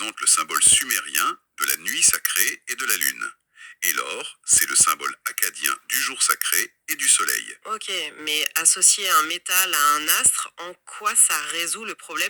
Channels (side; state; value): both; identical; correlation 1.00